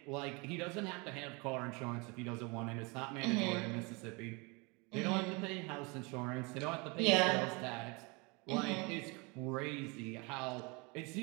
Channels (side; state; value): left; quieter; 28.7 dB